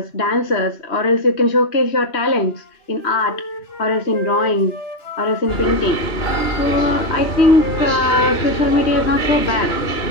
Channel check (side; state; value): right; late; 2.9 ms